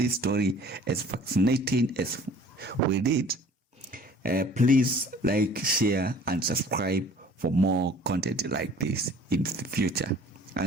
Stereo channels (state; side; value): normal; both; correlation 0.50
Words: story as fascinating as we did, please like, share, and subscribe for more content like this in the future.